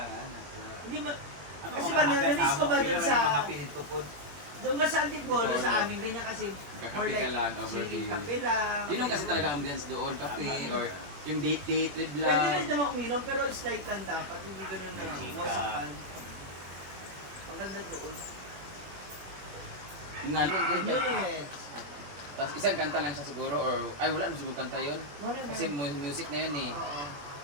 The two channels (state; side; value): late; left; 21 ms